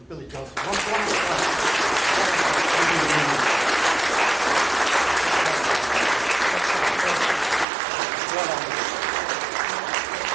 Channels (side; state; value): left; drops out; at 7.7 s